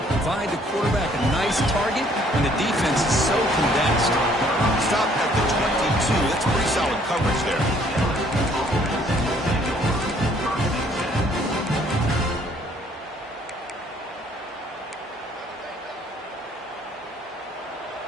provide the quarterback a nice target when the defense is so condensed. Stop at the 22. That's pretty solid coverage there.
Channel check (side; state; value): both; normal; correlation 0.62